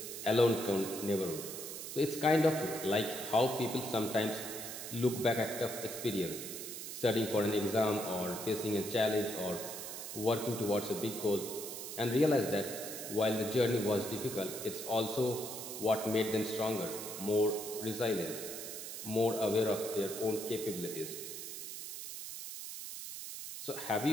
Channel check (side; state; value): right; noise; hiss, 8 dB below the sound